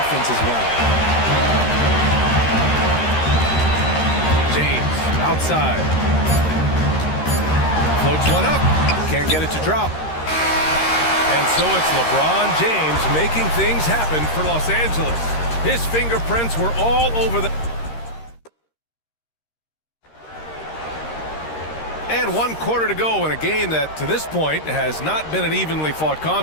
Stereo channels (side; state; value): right; late; 13 ms